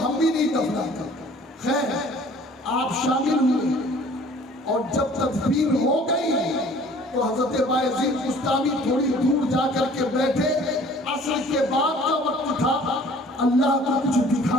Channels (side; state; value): both; normal; correlation 0.52